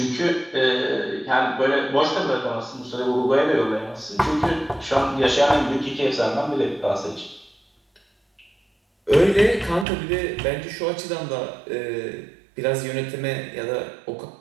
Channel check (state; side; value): drops out; left; at 9.9 s